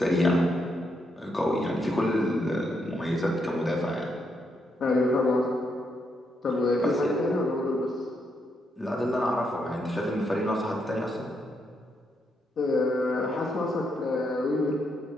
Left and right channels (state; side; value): normal; both; correlation 0.79